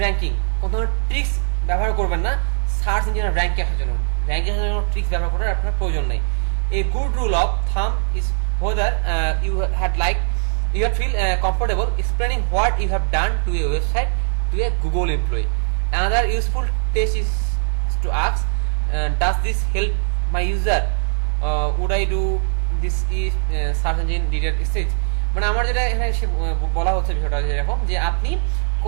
ranking. কোনো ধরনের ট্রিক্স ব্যবহার করবেন না সার্চ ইঞ্জিনের র্যাঙ্কে আসার জন্য। র্যাঙ্কে আসার জন্য ট্রিক্স ব্যবহার করার আপনার প্রয়োজন নেই। A good rule of thumb is whether you feel comfortable explaining what you have done to a website to a Google employee. Another useful test is to ask, does this help my user? Would I do this if search engine didn't exist? মানে আমার যেটা এখানে বলা হচ্ছে বিষয়টা এরকম যে আপনি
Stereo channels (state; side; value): silent; left; 55 dB below the other